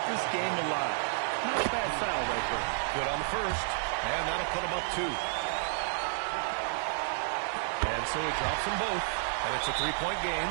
this game alive. Not a bad foul right there. Good on the first. And that'll put him up 2. And so he drops them both. And it's a 3-point game.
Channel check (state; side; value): silent; left; digital silence